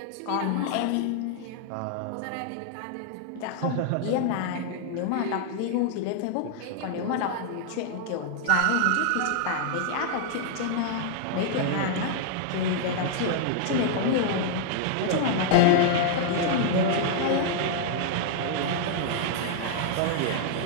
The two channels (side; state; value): both; different; correlation -0.01